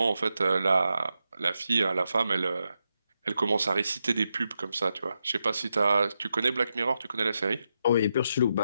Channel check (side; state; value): both; inverted; correlation -0.86